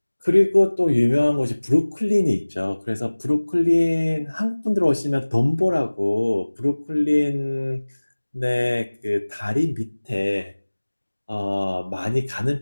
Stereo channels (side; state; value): both; inverted; correlation -1.00